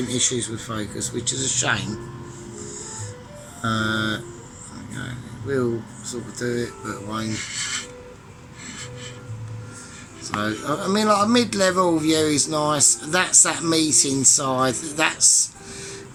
issues with focus, which is a shame. Okay, we'll sort of do it, but it won't. So I mean, like a mid-level view is nice. That's that meat inside. That's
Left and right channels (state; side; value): identical; both; correlation 1.00